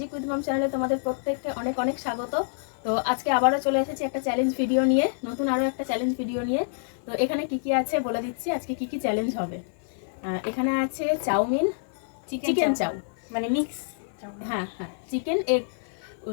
উইথ মম চ্যানেলে তোমাদের প্রত্যেককে অনেক অনেক স্বাগত। তো আজকে আবারও চলে এসেছি একটা চ্যালেঞ্জ ভিডিও নিয়ে, নতুন আরও একটা চ্যালেঞ্জ ভিডিও নিয়ে। তো এখানে কি কি আছে বলে দিচ্ছি, আজকে কি কি চ্যালেঞ্জ হবে। এখানে আছে চাউমিন, চিকেন চাউ, মানে মিক্স। হ্যাঁ হ্যাঁ,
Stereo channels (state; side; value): silent; right; 55 dB below the other